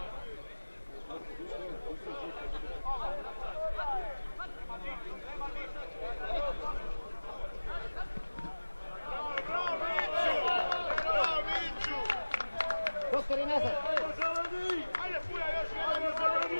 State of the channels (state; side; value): inverted; both; correlation -1.00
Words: Doktor i nazad. Ajde, Fulja, još jedan